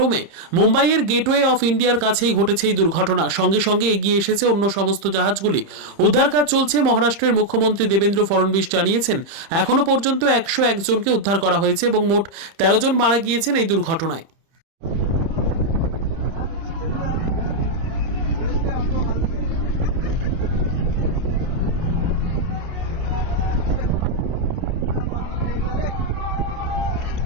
মুম্বাইয়ের গেটওয়ে অফ ইন্ডিয়ার কাছেই ঘটেছে এই দুর্ঘটনা। সঙ্গে সঙ্গে এগিয়ে এসেছে অন্য সমস্ত জাহাজগুলি। উদ্ধার কাজ চলছে। মহারাষ্ট্রের মুখ্যমন্ত্রী দেবেন্দ্র ফডনবিস জানিয়েছেন, এখনো পর্যন্ত 101 জনকে উদ্ধার করা হয়েছে এবং মোট 13 জন মারা গিয়েছেন এই দুর্ঘটনায়।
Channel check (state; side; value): late; left; 30 ms